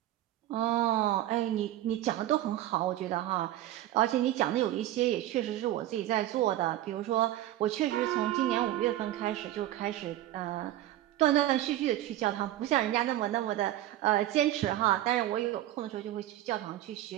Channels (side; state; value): left; quieter; 13.9 dB